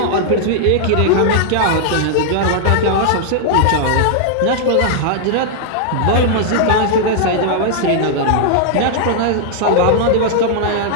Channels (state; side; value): different; both; correlation -0.01